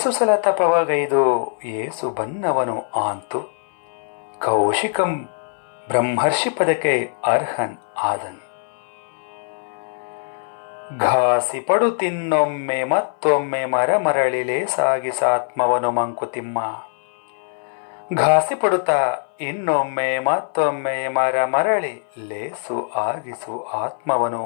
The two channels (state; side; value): silent; right; 59 dB below the other